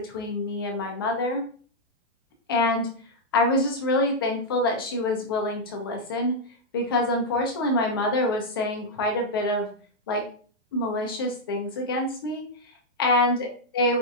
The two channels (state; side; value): normal; both; correlation -0.03